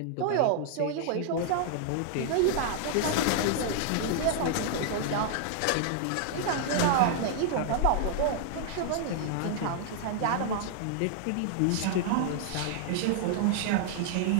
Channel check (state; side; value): different; both; correlation 0.00